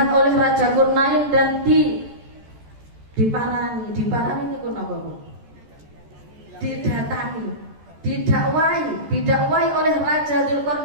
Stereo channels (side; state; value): left; late; 14 ms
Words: oleh Raja Dzulqarnain dan diparani itu apa Bu? Didatangi, didakwai oleh Raja